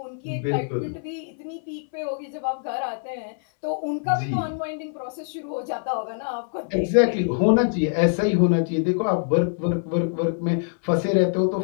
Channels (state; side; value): silent; right; 62 dB below the other